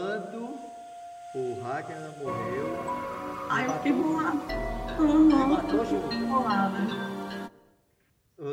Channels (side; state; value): both; identical; correlation 1.00